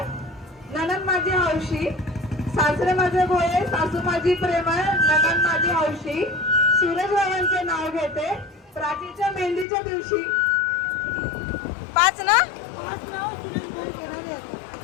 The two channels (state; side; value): drops out; right; at 9.7 s